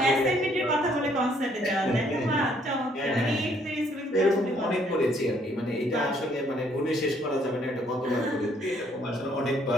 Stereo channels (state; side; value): normal; both; correlation 0.66